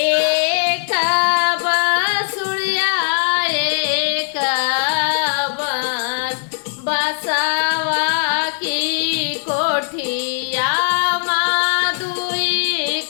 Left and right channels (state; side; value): silent; right; digital silence